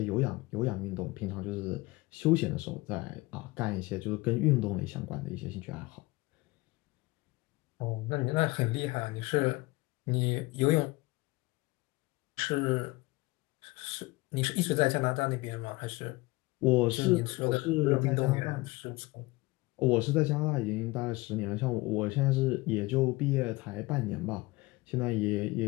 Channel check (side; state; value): right; quieter; 22.1 dB